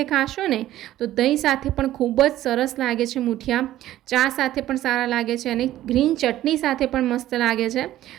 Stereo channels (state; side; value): quieter; left; 13.9 dB